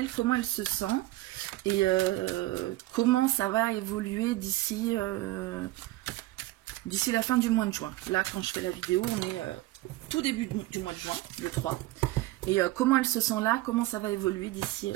comment elle se sent? Et comment ça va évoluer d'ici la fin du mois de juin. Là, quand je fais la vidéo, on est tout début du mois de juin, le 3. Et comment elle se sent là, comment ça va évoluer d'ici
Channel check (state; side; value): quieter; left; 18.0 dB